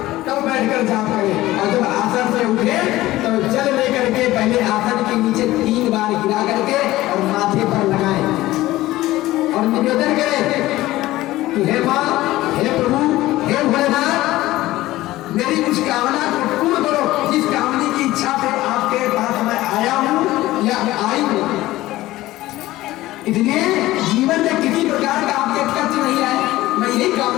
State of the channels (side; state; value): right; quieter; 16.8 dB